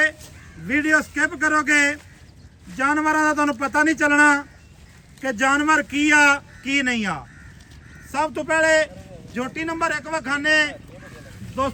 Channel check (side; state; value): both; identical; correlation 1.00